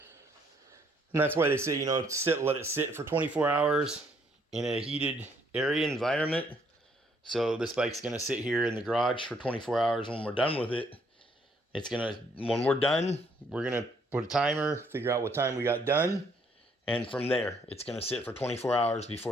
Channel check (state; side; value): normal; both; correlation 0.67